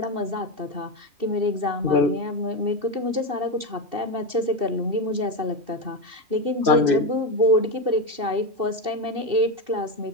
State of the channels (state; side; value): late; left; 2.7 ms